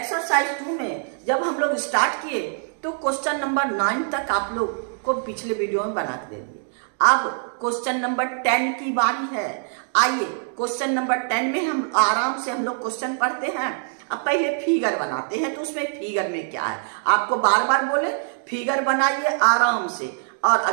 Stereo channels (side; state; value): left; silent; digital silence